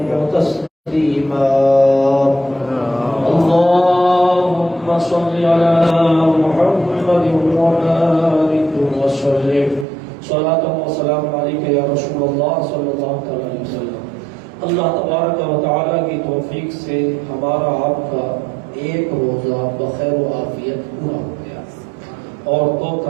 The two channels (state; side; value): drops out; left; at 9.9 s